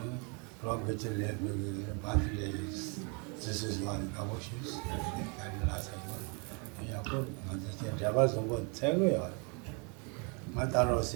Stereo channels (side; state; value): left; quieter; 34.7 dB